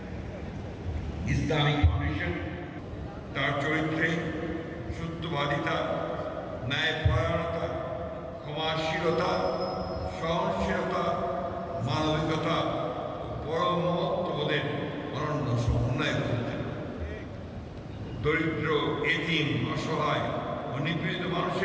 ইসলামিক ফাউন্ডেশন তার চরিত্রে সত্যবাদিতা, ন্যায়পরায়ণতা, ক্ষমাশীলতা, সহনশীলতা, মানবিকতা ও পরম মহত্ববোধের অনন্য সমন্বয় করেছেন। দরিদ্র, এতিম, অসহায় ও নিপীড়িত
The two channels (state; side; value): identical; both; correlation 1.00